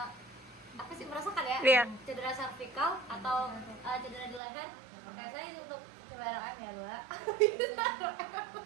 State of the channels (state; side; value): drops out; left; at 4.4 s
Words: apa sih merasakan ya? Iya. Cedera servikal atau cedera di leher? Oke, saya untuk coba ROM ya, Mbak.